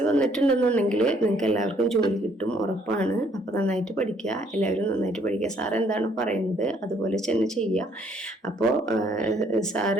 വന്നിട്ടുണ്ടെന്നുണ്ടെങ്കിൽ നിങ്ങൾക്ക് എല്ലാവർക്കും ജോലി കിട്ടും, ഉറപ്പാണ്. അപ്പോൾ നന്നായിട്ട് പഠിക്കുക, എല്ലാവരും നന്നായിട്ട് പഠിക്കുക. സാർ എന്താണ് പറയുന്നത് അതുപോലെ തന്നെ ചെയ്യുക. അപ്പോൾ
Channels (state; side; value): normal; both; correlation 0.65